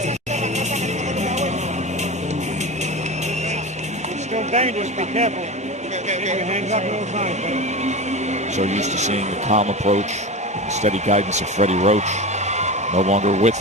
It's still dangerous. Be careful. Hands up all the time. So used to seeing the calm approach, the steady guidance of Freddie Roach. No longer with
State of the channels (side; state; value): both; normal; correlation 0.27